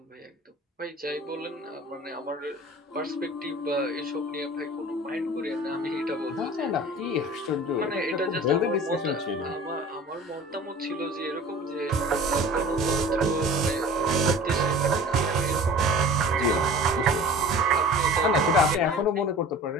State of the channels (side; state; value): both; normal; correlation 0.42